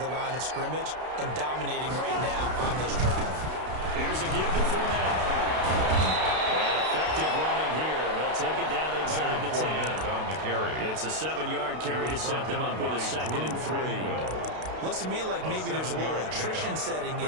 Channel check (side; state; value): left; late; 32 ms